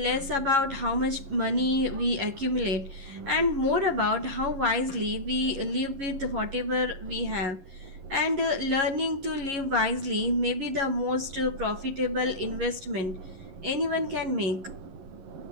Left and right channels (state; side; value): late; left; 11 ms